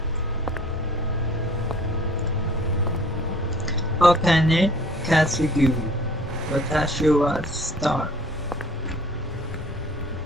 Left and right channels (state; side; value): normal; both; correlation 0.51